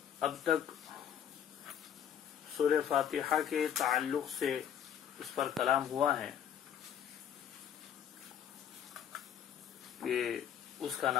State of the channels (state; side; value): quieter; right; 9.3 dB